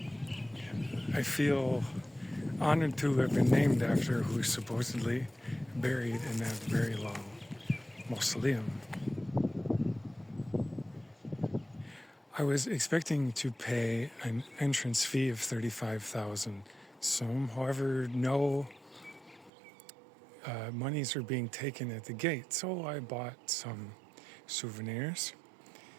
I feel honored to have been named after who's supposedly buried in that very long mausoleum. I was expecting to pay an entrance fee of 35,000 som. However, no monies are being taken at the gate, so I bought some souvenirs.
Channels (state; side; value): drops out; left; at 19.5 s